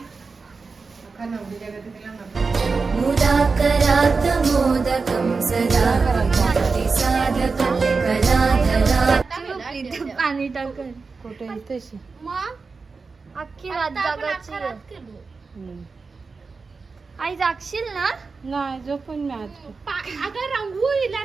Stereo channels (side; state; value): left; quieter; 4.5 dB